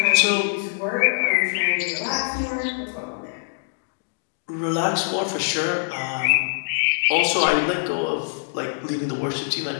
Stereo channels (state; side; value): silent; right; digital silence